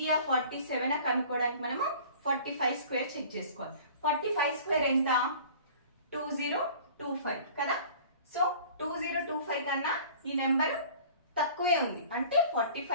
47 కనుక్కోవడానికి మనము 45 స్క్వేర్ చెక్ చేసుకోవాలి. 45 స్క్వేర్ ఎంత 2025 కదా. సో 2025 కన్నా ఈ నెంబర్ తక్కువే ఉంది. అంటే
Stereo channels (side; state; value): both; inverted; correlation -0.45